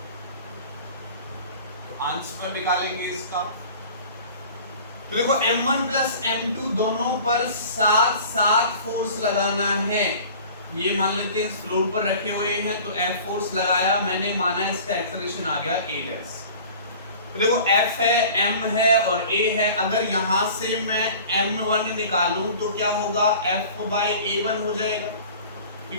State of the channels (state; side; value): inverted; both; correlation -0.44